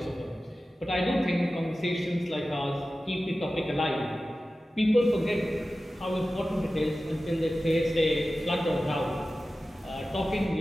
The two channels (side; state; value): both; normal; correlation 0.95